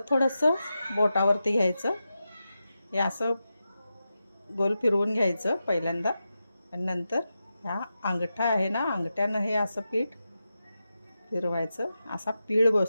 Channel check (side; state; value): both; inverted; correlation -0.90